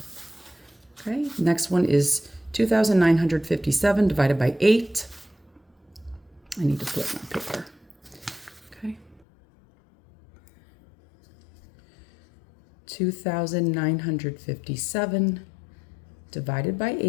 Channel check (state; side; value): drops out; right; at 9.2 s